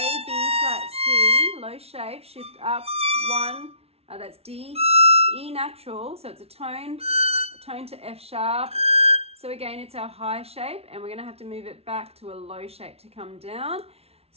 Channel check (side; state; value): left; late; 0.30 ms